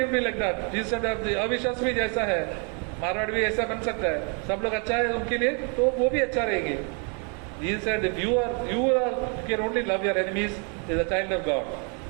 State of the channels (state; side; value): quieter; left; 37.2 dB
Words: be like that. Jesus said अविश्वास भी जैसा है, मारवाड़ भी ऐसा बन सकता है. सब लोग अच्छा है उनके लिए तो वो भी अच्छा रहेंगे. Jesus said, if you can only love your enemies as a child of God.